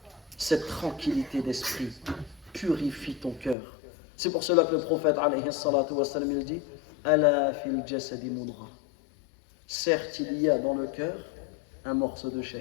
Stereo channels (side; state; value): right; drops out; at 3.6 s